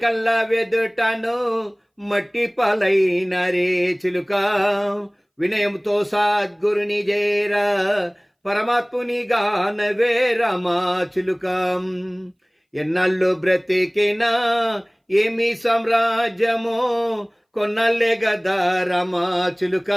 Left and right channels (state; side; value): identical; both; correlation 1.00